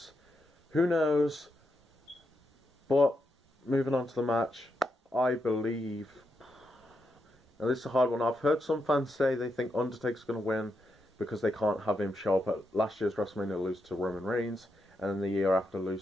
Who knows? But moving on to the match, I believe... Now this is a hard one. I've heard some fans say they think Undertaker's going to win because they can't have him show up at last year's WrestleMania, lose to Roman Reigns, and then the year after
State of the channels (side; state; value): both; normal; correlation 0.83